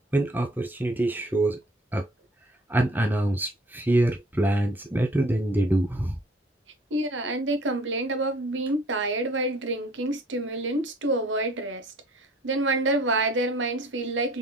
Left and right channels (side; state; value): both; normal; correlation 0.54